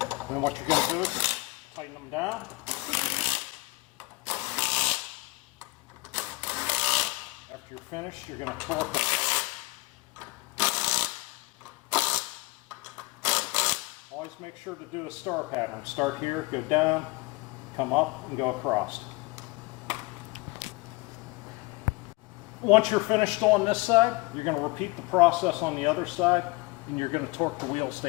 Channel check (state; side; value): quieter; right; 23.4 dB